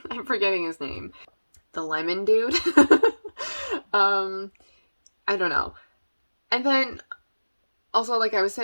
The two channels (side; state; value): both; inverted; correlation -1.00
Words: I'm forgetting his name. The lemon dude. I don't know. And then also, like I was